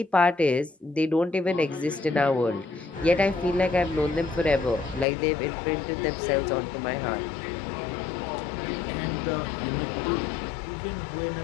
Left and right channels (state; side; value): drops out; right; at 5.1 s